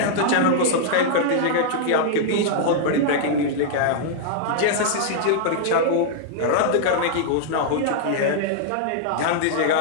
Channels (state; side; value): different; both; correlation -0.01